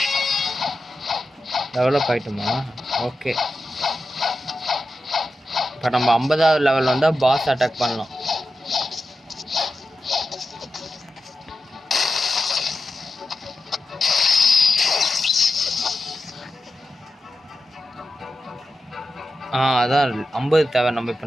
டெவலப் ஆகிட்டோமா? ஓகே, இப்போ நம்ம 50வது லெவல் வந்தால் பாஸ் அட்டாக் பண்ணலாம். அதான் 50 தேவை. நம்ம இப்போ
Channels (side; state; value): both; normal; correlation 0.90